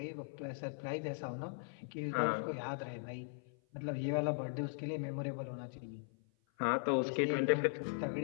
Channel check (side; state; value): right; silent; 52 dB below the other